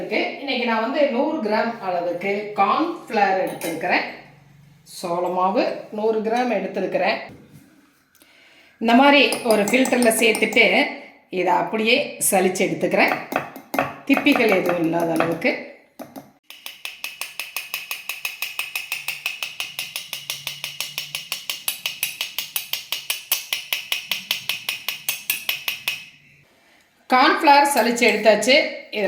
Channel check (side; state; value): both; identical; correlation 1.00